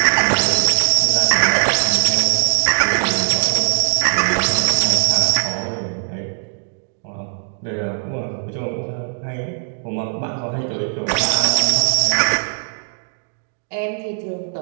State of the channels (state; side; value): silent; left; digital silence